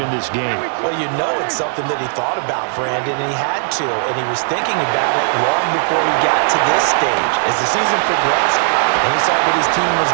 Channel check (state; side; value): silent; left; digital silence